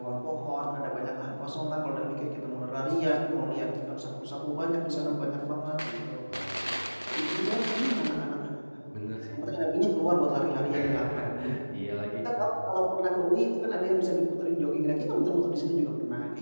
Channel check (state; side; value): inverted; both; correlation -1.00